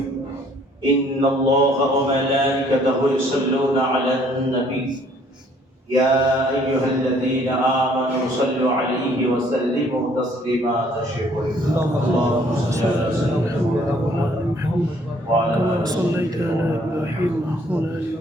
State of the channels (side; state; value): both; normal; correlation 0.61